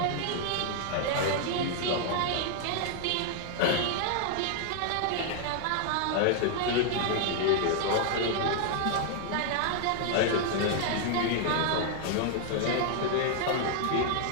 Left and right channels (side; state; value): both; different; correlation 0.00